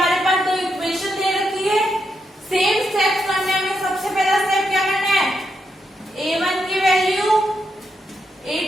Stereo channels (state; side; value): normal; both; correlation 0.82